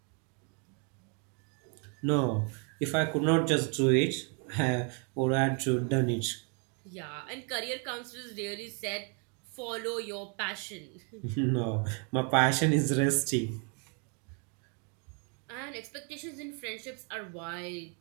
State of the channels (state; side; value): quieter; left; 38.1 dB